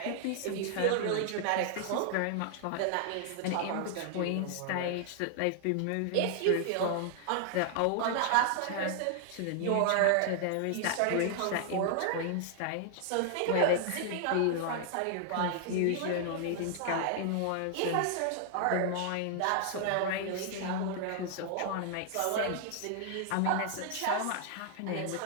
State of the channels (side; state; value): both; different; correlation 0.00